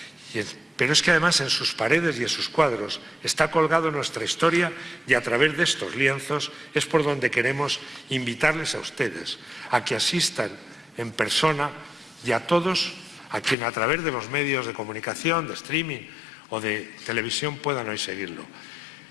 pero es que además en sus paredes y en sus cuadros está colgado nuestra historia, y a través de estos lienzos es por donde queremos invitarles a ustedes a que asistan en persona, y a todos a quien a través de los medios de comunicación, de streaming o de televisión puedan hoy seguirlo.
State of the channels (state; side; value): drops out; right; at 13.6 s